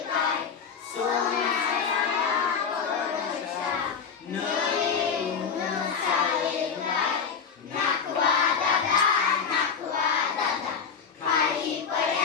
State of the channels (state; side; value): quieter; right; 6.3 dB